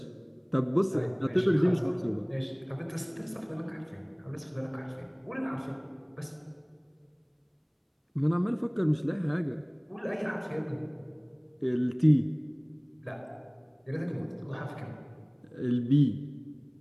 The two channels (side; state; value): both; identical; correlation 1.00